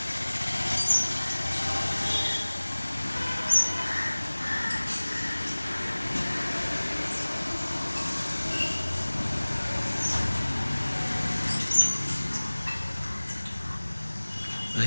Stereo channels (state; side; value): inverted; both; correlation -1.00